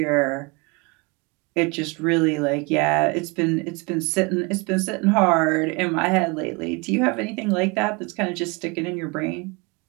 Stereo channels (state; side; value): quieter; left; 28.2 dB